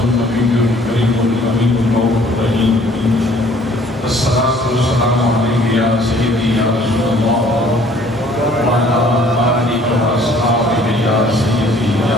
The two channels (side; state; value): both; normal; correlation 0.57